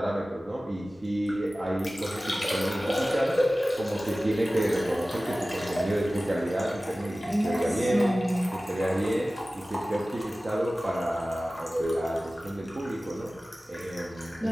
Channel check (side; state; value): both; normal; correlation 0.97